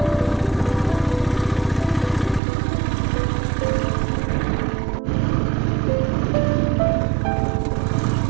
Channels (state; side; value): drops out; left; at 2.4 s